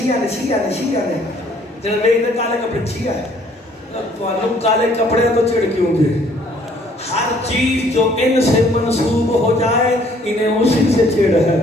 نے جب میرے کالے کپڑے شیعہ ہے تو کالے کپڑے تو چڑھ کیوں گے ہر چیز جو ان سے منسوب ہو جائے انہیں اسی سے چڑھ ہے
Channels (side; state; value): both; normal; correlation 0.61